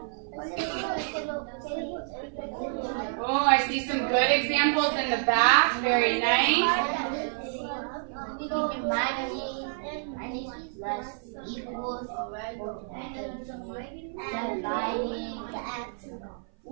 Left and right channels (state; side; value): silent; left; 57 dB below the other